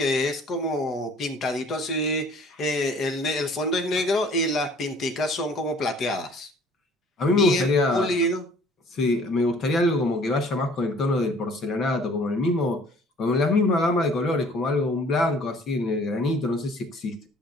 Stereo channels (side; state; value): both; normal; correlation 0.54